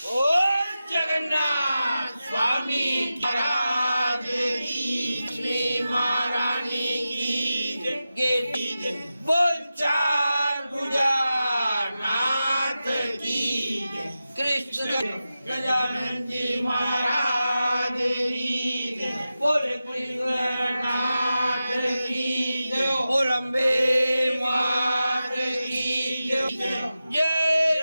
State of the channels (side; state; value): both; inverted; correlation -0.93